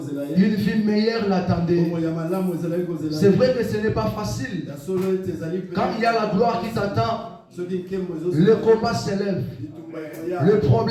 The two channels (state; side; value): identical; both; correlation 1.00